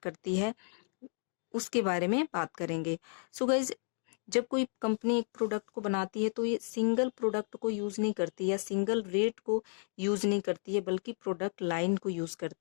है, उसके बारे में बात करेंगे। सो गाइस, जब कोई कंपनी एक प्रोडक्ट को बनाती है तो ये सिंगल प्रोडक्ट को यूज़ नहीं करती या सिंगल रेट को यूज़ नहीं करती है, बल्कि प्रोडक्ट लाइन को यूज़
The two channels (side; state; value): right; silent; 56 dB below the other